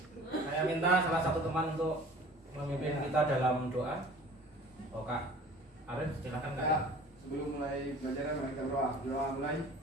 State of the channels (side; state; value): both; normal; correlation 0.45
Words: saya minta salah satu teman untuk memimpin kita dalam doa. Kak Arif, silakan Kak. Sebelum mulai belajar, mari kita berdoa. Doa mulai.